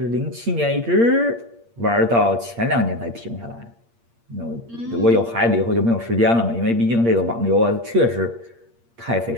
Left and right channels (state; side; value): late; left; 8.6 ms